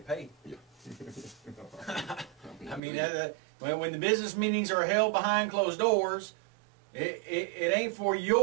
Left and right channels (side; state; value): left; drops out; at 2.8 s